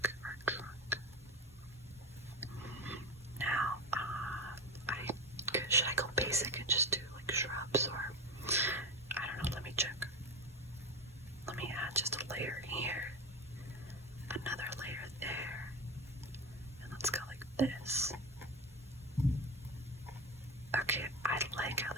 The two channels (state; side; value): normal; both; correlation 0.21